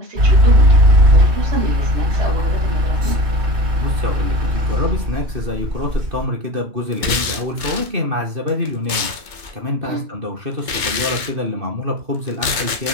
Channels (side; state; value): left; late; 2.2 ms